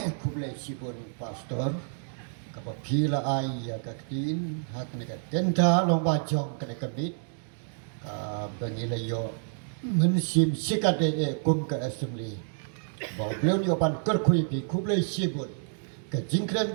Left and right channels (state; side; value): silent; left; digital silence